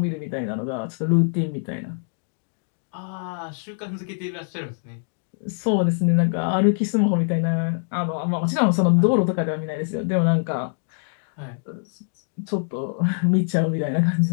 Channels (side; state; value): right; silent; digital silence